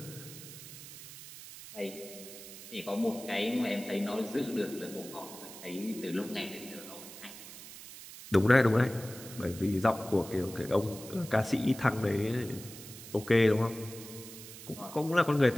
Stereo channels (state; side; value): noise; right; hiss, 14 dB below the sound